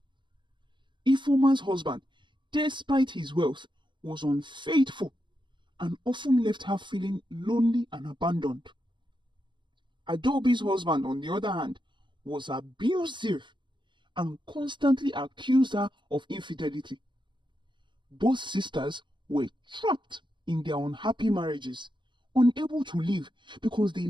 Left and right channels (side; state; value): left; late; 0.23 ms